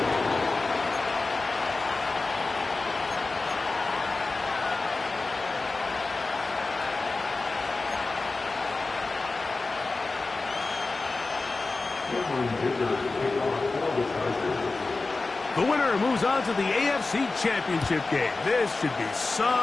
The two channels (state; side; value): quieter; right; 3.6 dB